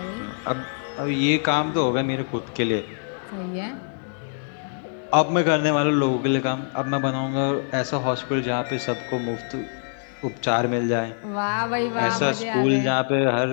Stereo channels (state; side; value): silent; right; digital silence